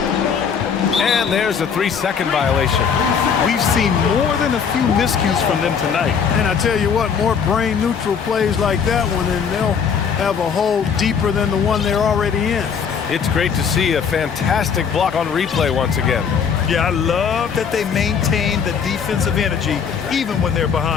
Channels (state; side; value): quieter; right; 6.8 dB